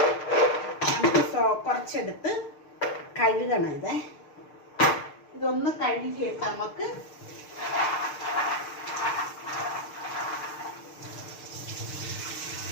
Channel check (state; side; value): late; right; 6.6 ms